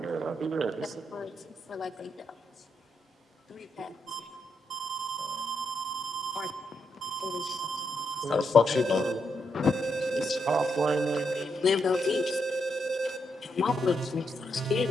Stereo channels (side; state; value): both; normal; correlation 0.80